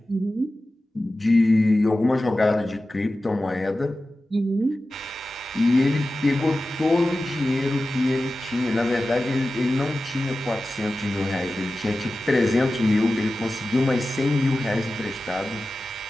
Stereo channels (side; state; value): both; normal; correlation 0.94